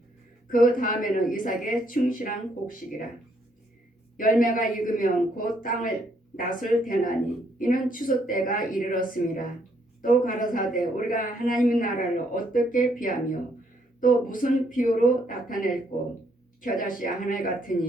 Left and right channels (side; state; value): both; normal; correlation 0.71